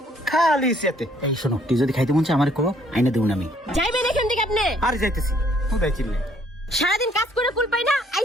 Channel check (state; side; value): normal; both; correlation 0.64